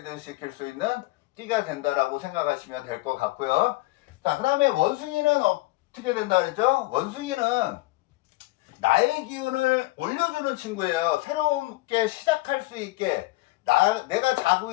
시킬 수 있는 띠가 된다라고 생각하시면 될 것 같고요. 자, 그 다음에 원숭이는 어떻게 된다 그랬죠? 원숭이는 나의 기운을 올려주는 친구예요. 새롭게 시작할 수 있게 내가 자고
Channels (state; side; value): quieter; right; 20.7 dB